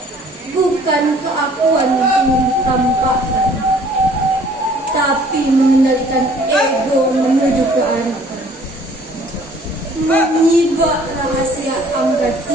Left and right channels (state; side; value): normal; both; correlation 0.56